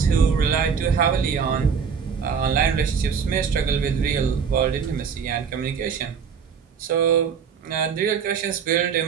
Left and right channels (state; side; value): quieter; left; 6.6 dB